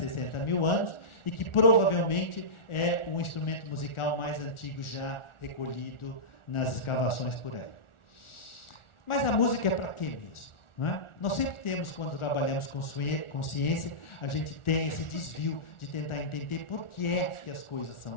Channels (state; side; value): late; right; 1.4 ms